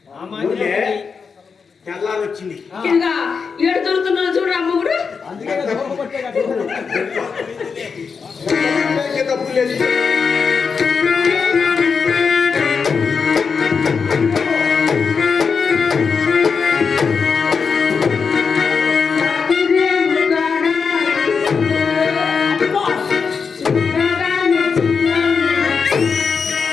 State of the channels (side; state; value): right; quieter; 5.6 dB